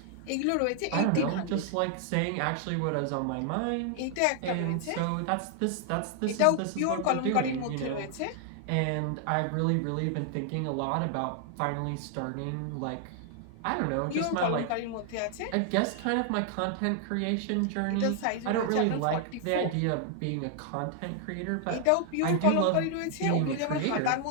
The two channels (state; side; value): different; both; correlation 0.00